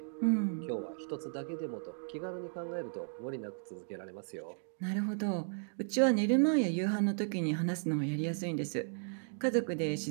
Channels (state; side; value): silent; left; digital silence